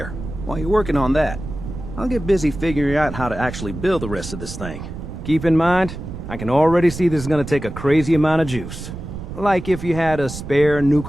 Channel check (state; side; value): noise; right; rumble, 9 dB below the sound